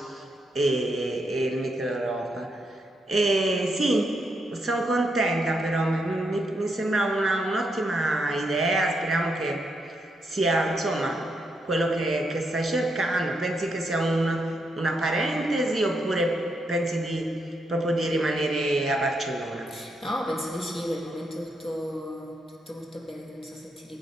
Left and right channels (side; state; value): both; normal; correlation 0.80